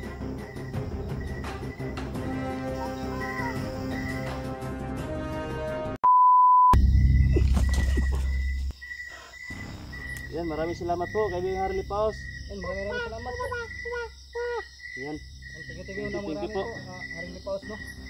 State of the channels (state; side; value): identical; both; correlation 1.00